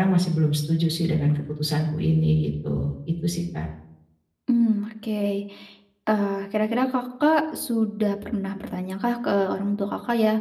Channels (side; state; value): both; identical; correlation 1.00